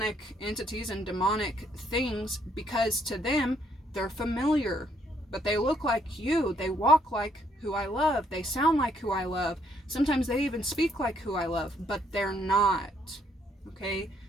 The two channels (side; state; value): both; normal; correlation 0.70